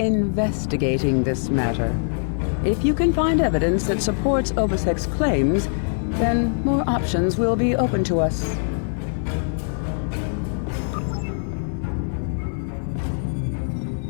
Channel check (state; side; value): silent; right; 59 dB below the other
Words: this matter. If you can find evidence that supports Obisek's claims, then more options will be open to us.